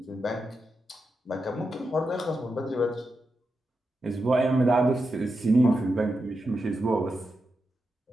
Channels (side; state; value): both; normal; correlation 0.88